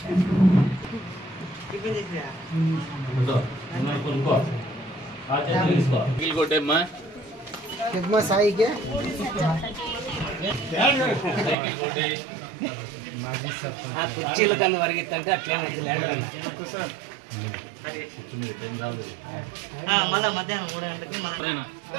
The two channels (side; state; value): left; drops out; at 11.6 s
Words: సాయికి కుర్చీల కన్నా వరిగిద్దంటే అట్లే మళ్ళీ మధ్యాహ్నం 3 గంటలకి